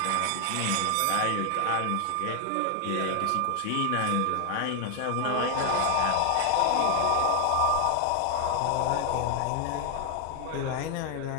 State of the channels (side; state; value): both; different; correlation 0.00